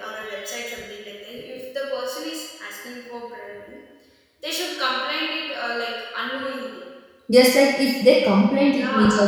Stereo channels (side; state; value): both; identical; correlation 1.00